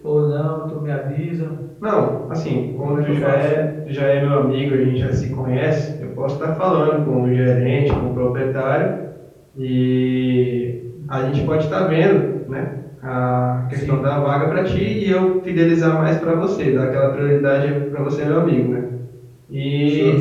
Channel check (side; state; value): both; identical; correlation 1.00